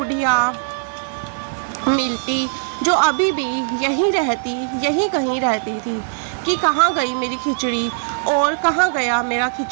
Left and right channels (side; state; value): left; silent; digital silence